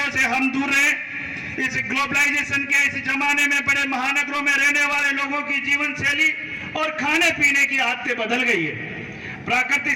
से हम दूर रहें। इस ग्लोबलाइजेशन के इस जमाने में बड़े महानगरों में रहने वाले लोगों की जीवन शैली और खाने पीने की आदतें बदल गई है। प्रकृति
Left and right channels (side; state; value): both; identical; correlation 1.00